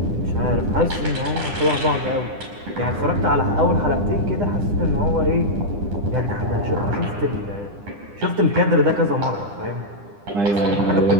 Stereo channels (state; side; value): late; left; 9.9 ms